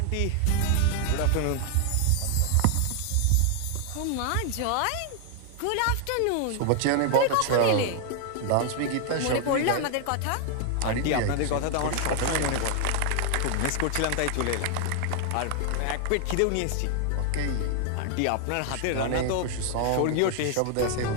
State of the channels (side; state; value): both; different; correlation 0.00